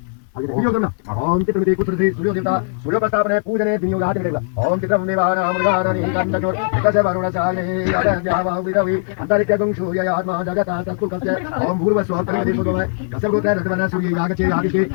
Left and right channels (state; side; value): silent; right; digital silence